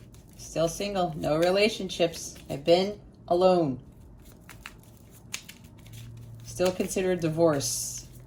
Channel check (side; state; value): both; identical; correlation 1.00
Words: Still single, no relationships. I've been alone. Still considered divorce